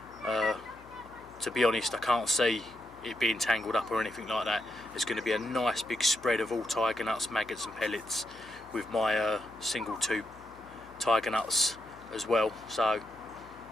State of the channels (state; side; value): noise; left; hum, 23 dB below the sound